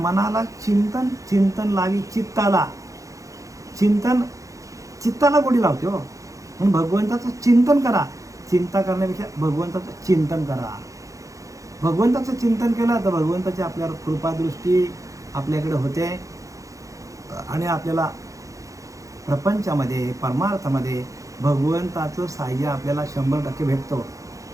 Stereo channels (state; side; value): late; left; 0.16 ms